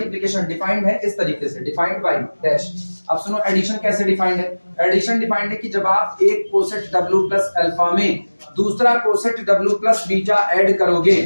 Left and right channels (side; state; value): both; inverted; correlation -1.00